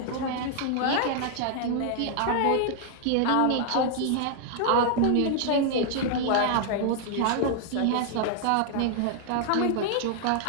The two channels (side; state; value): both; different; correlation 0.00